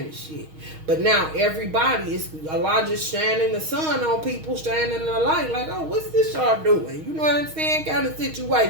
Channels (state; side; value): late; left; 6.4 ms